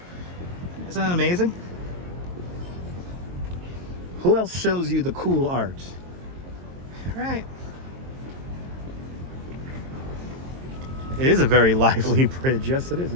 that amazing? Who else shows you the cool art? All right. It is a very lively bridge. Yes, it is.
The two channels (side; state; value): left; late; 22 ms